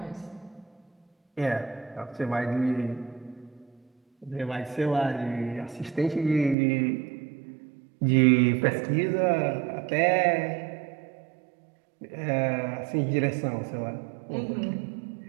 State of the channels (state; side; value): drops out; left; at 6.6 s